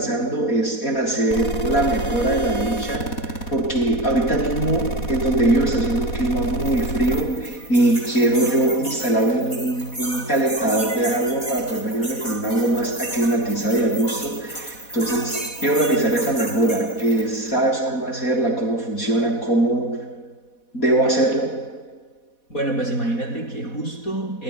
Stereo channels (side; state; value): right; late; 4.1 ms